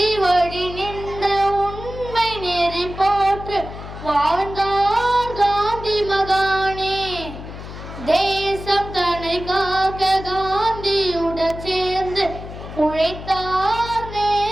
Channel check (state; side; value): noise; left; hum, 11 dB below the sound